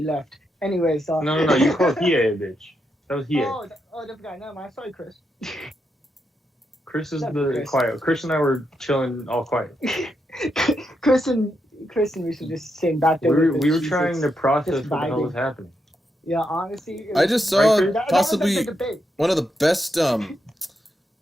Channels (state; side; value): normal; both; correlation 0.83